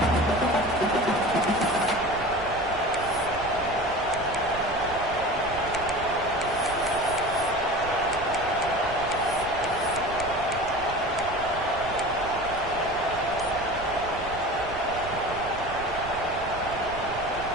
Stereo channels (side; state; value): right; noise; rumble, 14 dB below the sound